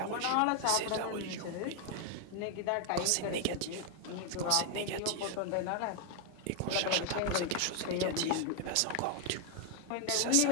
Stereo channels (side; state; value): both; different; correlation 0.00